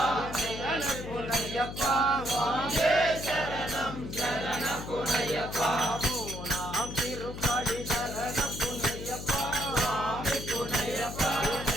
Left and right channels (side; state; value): left; noise; hum, 9 dB below the sound